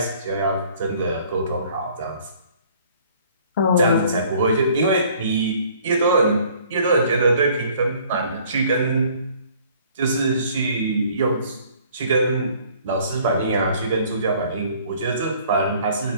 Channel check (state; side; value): inverted; both; correlation -0.57